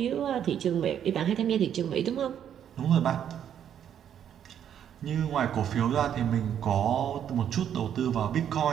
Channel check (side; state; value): left; quieter; 9.4 dB